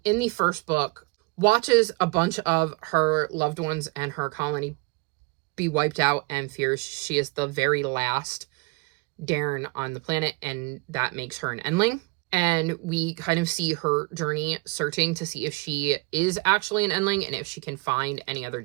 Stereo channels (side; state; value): left; quieter; 28.2 dB